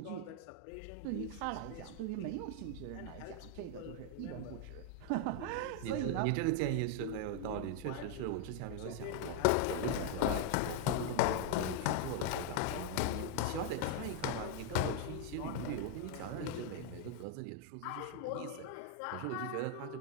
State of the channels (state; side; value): different; both; correlation 0.00